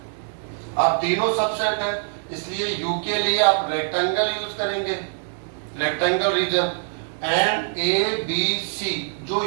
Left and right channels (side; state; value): left; silent; digital silence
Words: अब तीनों सबसेट है, इसलिए यू के लिए आप रेक्टेंगल यूज करेंगे, rectangle region. And A B C जो